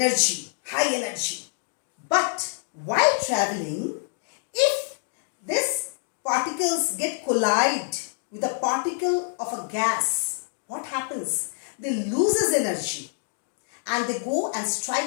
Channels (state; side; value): silent; right; digital silence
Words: high energy. But while traveling, if these particles get collide with a particle of a gas, what happens? They loses energy and they go and